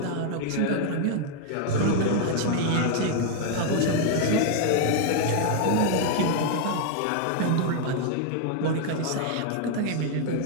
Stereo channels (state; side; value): different; both; correlation 0.00